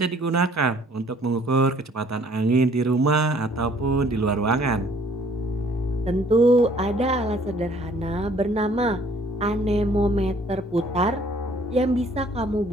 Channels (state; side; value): normal; both; correlation 0.59